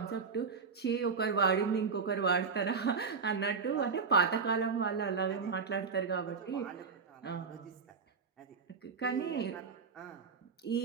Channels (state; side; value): quieter; left; 5.3 dB